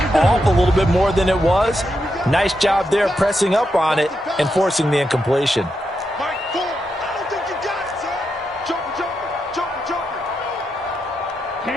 off a little bit more than it was. Nice job there pressing up on it and forcing the incompletion. Mike 4. I don't think you got it, sir. Jumper.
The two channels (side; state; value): both; normal; correlation 0.84